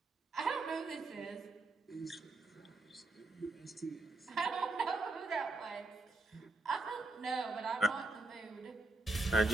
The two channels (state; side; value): quieter; left; 3.2 dB